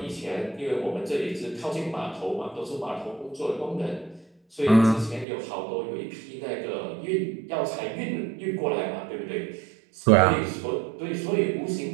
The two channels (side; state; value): left; drops out; at 5.2 s